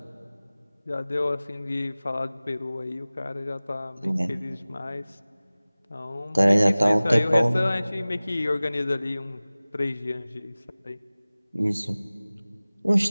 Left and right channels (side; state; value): both; inverted; correlation -0.98